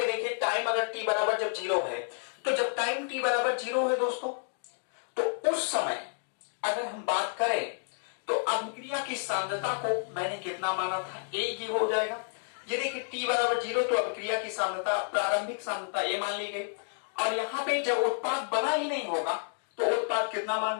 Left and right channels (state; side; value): silent; right; digital silence